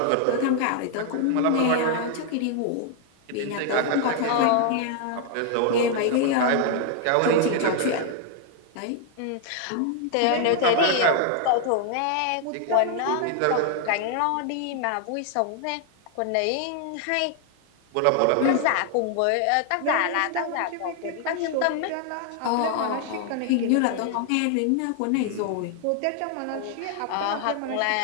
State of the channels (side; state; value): both; different; correlation 0.00